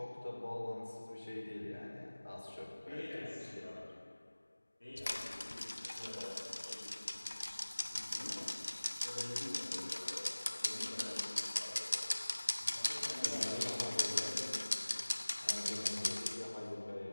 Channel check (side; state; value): both; inverted; correlation -1.00